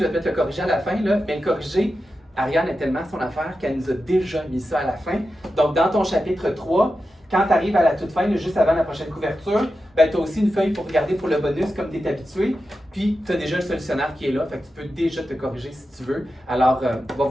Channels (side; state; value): both; normal; correlation 0.91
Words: vais peut-être le corriger à la fin, là, mais le corriger, Ariane est tellement son affaire qu'elle nous a déjà mis ça à la fin. Donc, dans ton chapitre 3, quand tu arrives à la toute fin, là, juste avant la prochaine couverture, ben, tu as aussi une feuille pour regarder pour le bonus, comme tu es habitué. Puis, tu as déjà le solutionnaire qui est là, fait que tu peux déjà te corriger si tu veux. Alors, va